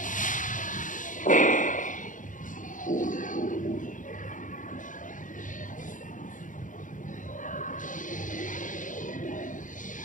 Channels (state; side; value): late; right; 0.38 ms